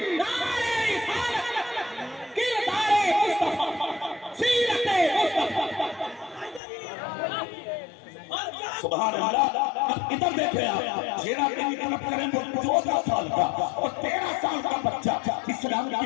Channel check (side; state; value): right; drops out; at 6.6 s